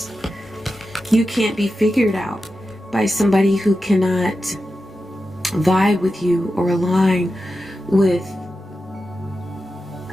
You can't be figured out by somebody who cannot vibe with you or align with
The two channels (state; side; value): normal; both; correlation 0.91